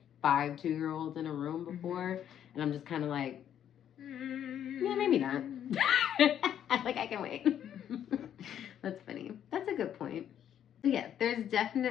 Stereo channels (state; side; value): quieter; right; 9.9 dB